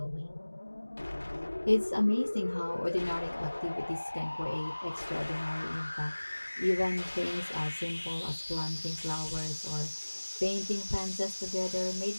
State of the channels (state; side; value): inverted; both; correlation -1.00